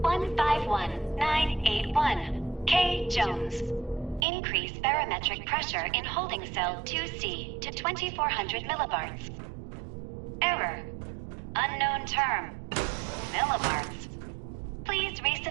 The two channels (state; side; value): drops out; left; at 4.2 s